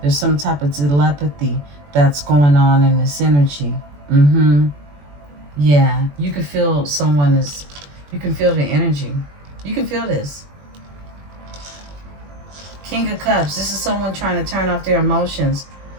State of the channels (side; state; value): left; late; 21 ms